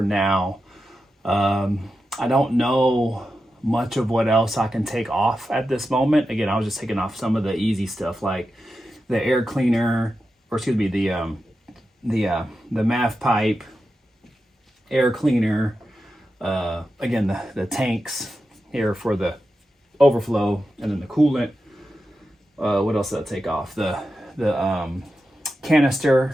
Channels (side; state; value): both; normal; correlation 0.90